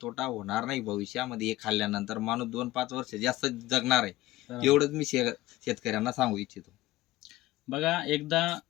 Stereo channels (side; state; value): right; quieter; 17.2 dB